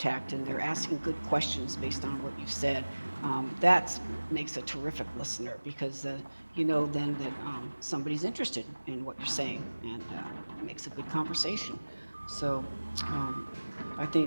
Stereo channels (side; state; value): both; inverted; correlation -1.00